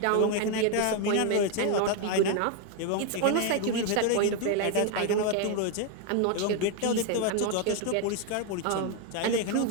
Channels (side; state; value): both; different; correlation 0.01